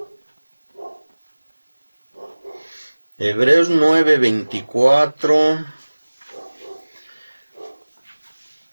Hebreos 9, 24,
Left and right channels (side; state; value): both; inverted; correlation -1.00